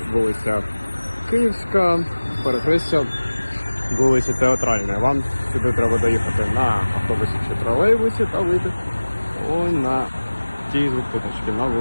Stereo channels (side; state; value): both; inverted; correlation -1.00